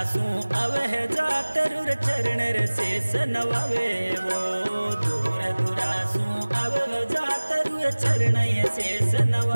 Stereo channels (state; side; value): inverted; both; correlation -1.00